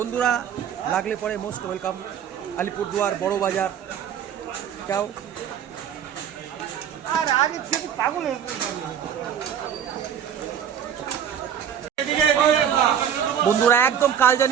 লাগলে পরে মোস্ট ওয়েলকাম আলিপুরদুয়ার বড় বাজার। যাও বন্ধুরা, একদম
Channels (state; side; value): quieter; left; 8.9 dB